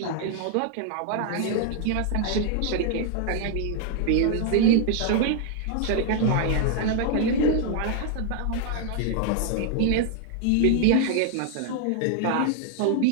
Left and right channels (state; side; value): different; both; correlation 0.00